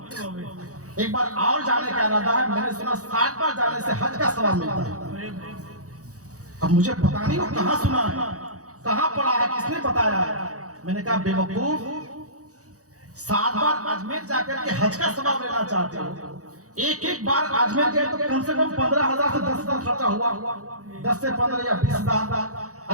ایک بار اور جانے کا ارادہ ہے۔ میں نے سنا 60 بار جانے سے حج کا ثواب ملتا ہے۔ اب مجھے پتا نہیں وہ کہاں سنا ہے، کہاں پڑھا ہے، کس نے بتایا ہے۔ میں نے کہا بے وقوف، 7 بار اجمیر جا کر کے حج کا ثواب لینا چاہتے ہو، ایک بار اجمیر گئے تو کم سے کم 15,000 سے 10,000 خرچہ ہوا، 10 سے 15 یا 20,000۔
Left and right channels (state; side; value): late; left; 0.66 ms